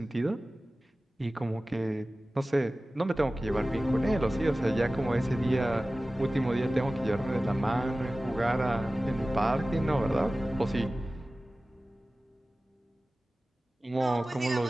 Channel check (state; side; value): normal; both; correlation 0.97